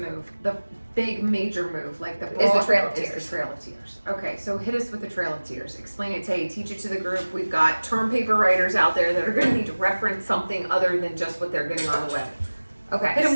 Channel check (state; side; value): inverted; both; correlation -1.00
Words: big major move, like the Is the Trail of is Tears. the Trail of Tears. Okay, so hit us with the Trail of Tears. Explain it, Tay. Teach it to the group. We've got term paper writers out there that are going to need to reference something other than just what they're getting on the web. Okay, Hit 'em